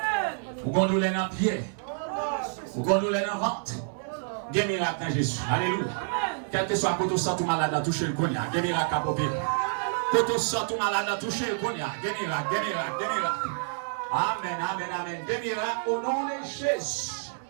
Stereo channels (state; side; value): silent; left; digital silence